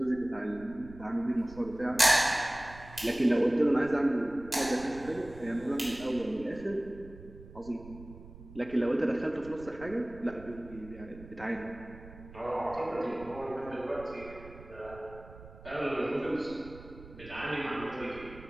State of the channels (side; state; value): right; noise; rumble, 17 dB below the sound